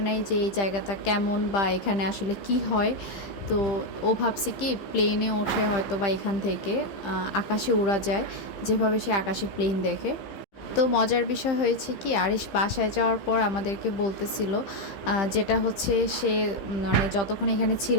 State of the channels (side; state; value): right; late; 15 ms